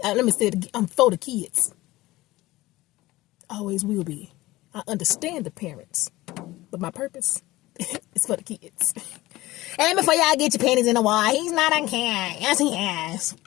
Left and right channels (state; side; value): quieter; right; 18.4 dB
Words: Let me say it again. I'm for the kids. Always will be. I understand the parents, but my purpose is for the kids. And before y'all get your panties in the wall, he's not on can. Yes, he has.